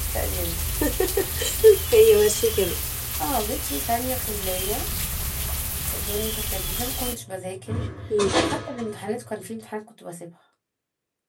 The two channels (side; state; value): both; identical; correlation 1.00